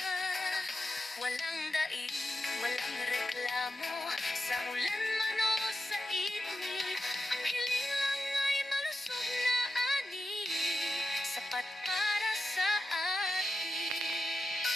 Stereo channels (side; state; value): both; normal; correlation 0.89